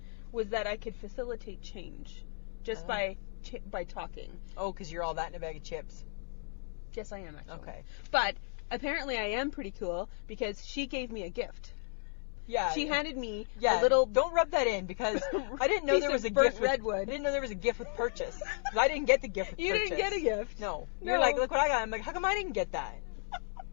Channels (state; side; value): silent; right; 55 dB below the other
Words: was that I could facilitate change just Oh. by talking. Oh, because you're all that in a bag of chips. Yes, I am actually. Okay. But apparently I am pretty cool because she gave me a gift. Yeah. She handed me yeah. a little Don't rub that in because I didn't know piece there was of a burnt gift. I redwood. didn't know there was a gift with purchase. 'Cause I didn't get the gift with You purchase. didn't get a gift. No. No. You're like, look what I got. I'm like, how come I didn't get that?